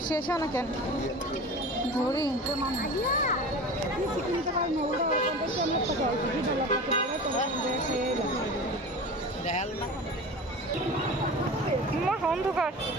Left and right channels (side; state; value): both; normal; correlation 0.34